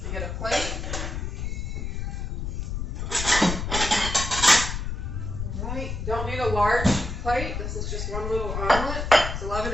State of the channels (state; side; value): noise; left; rumble, 4 dB below the sound